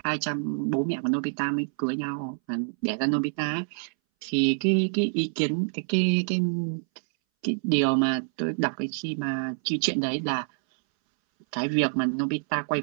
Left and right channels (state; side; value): silent; left; 60 dB below the other